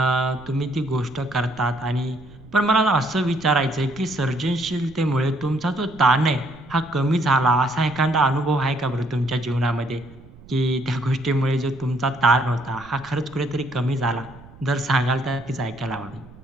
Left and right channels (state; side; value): noise; right; rumble, 21 dB below the sound